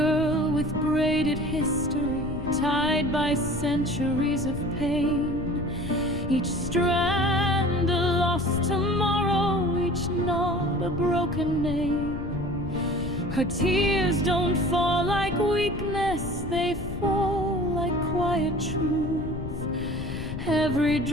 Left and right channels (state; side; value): noise; left; rumble, 8 dB below the sound